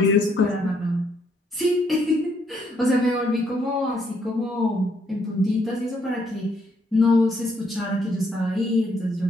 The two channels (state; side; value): normal; both; correlation 0.71